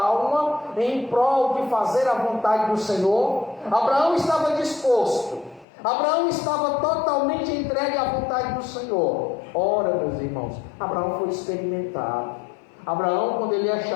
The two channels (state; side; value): drops out; right; at 5.7 s